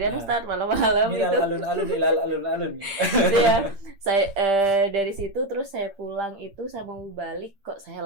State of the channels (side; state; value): left; late; 8.8 ms